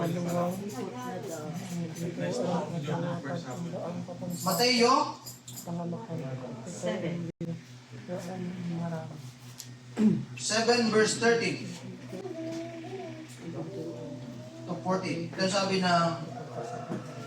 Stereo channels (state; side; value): identical; both; correlation 1.00